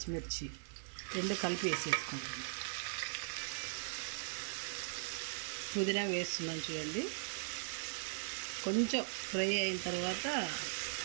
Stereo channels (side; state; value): left; silent; digital silence